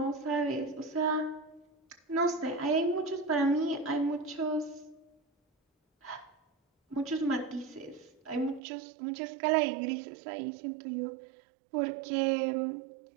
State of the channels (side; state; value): left; drops out; at 8.6 s